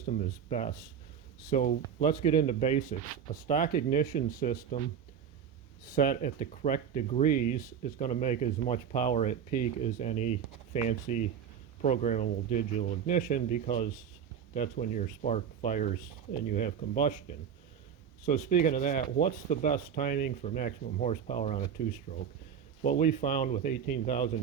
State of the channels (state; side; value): quieter; left; 7.9 dB